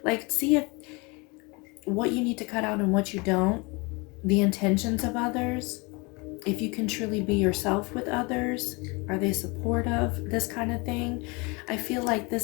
like see if what you need to cut out and what you don't, the intentions of others, if you can truly be yourself with others, are they supportive, this kind of thing. I feel like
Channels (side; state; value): right; quieter; 27.9 dB